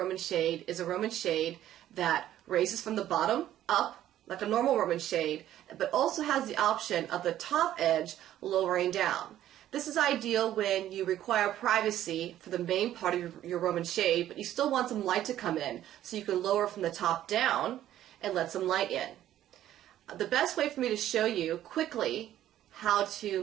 shade is a Roman shade that raises from the bottom up, like a normal Roman shade, but also has the option of the top edge lowering down. This is ideal when you require privacy for the main part of your Roman shade, but you still want some light to come in, so you can lower from the top down and let some light in. The best way for me to show you quickly how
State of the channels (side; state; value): left; quieter; 12.4 dB